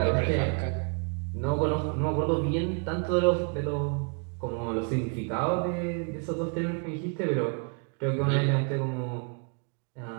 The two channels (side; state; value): left; quieter; 37.7 dB